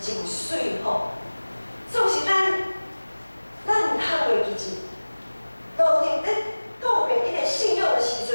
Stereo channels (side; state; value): both; inverted; correlation -1.00